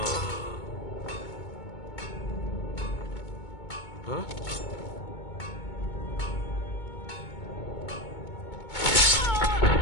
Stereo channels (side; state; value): right; late; 2.2 ms